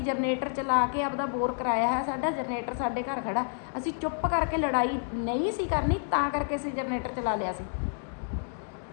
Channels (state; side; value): silent; right; digital silence